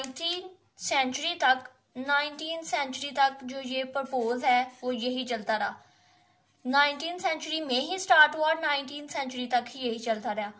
सेंचुरी तक जो ये प्रपोज है वो यही चलता रहा। 19th सेंचुरी में ही स्टार्ट हुआ और 19th सेंचुरी तक ही यही चलता रहा।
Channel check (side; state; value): both; identical; correlation 1.00